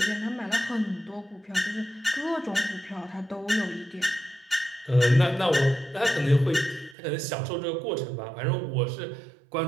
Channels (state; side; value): drops out; left; at 7.0 s